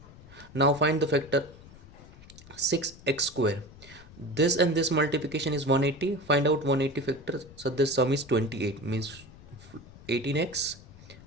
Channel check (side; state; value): left; noise; rumble, 20 dB below the sound